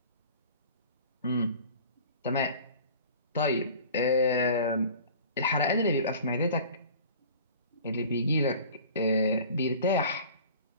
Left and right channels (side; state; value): both; inverted; correlation -0.44